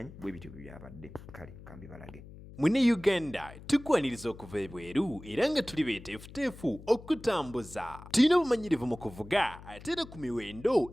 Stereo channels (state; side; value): noise; left; hum, 17 dB below the sound